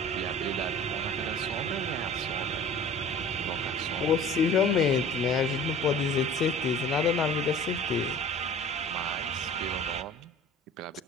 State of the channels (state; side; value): normal; both; correlation 0.43